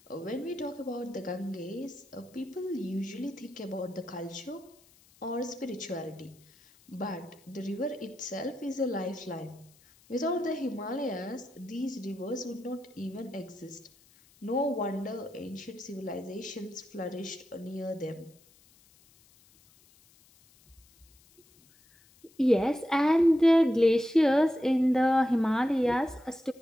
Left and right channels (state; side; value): noise; left; hiss, 29 dB below the sound